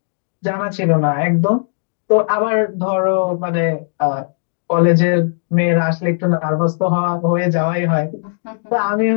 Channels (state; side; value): silent; right; digital silence